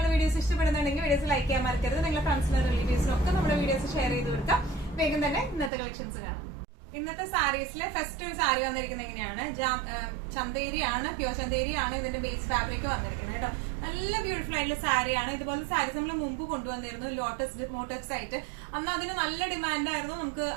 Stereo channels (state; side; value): drops out; left; at 5.7 s